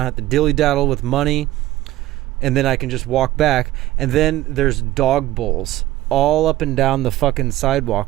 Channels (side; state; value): left; quieter; 15.7 dB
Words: have to dilly-daddle with money, and then I can just walk back. And then there's dog bowls all up and down the fucking